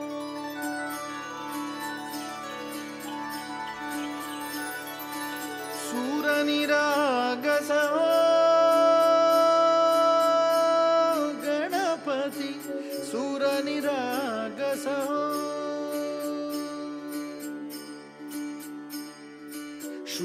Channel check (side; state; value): both; identical; correlation 1.00